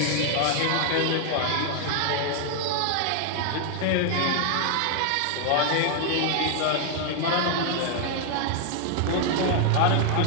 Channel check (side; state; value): both; different; correlation 0.00